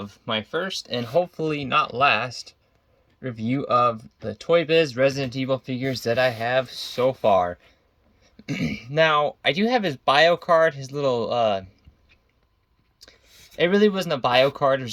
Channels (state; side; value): identical; both; correlation 1.00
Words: my first and hopefully not last review of the toybiz Resident Evil figures that I have so far. Now, I do have his bio card, his little, it really wasn't a bio card, it